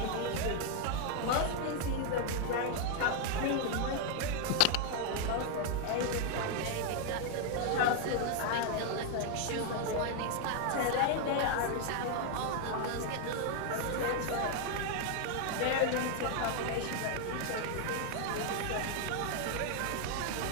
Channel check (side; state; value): both; different; correlation 0.00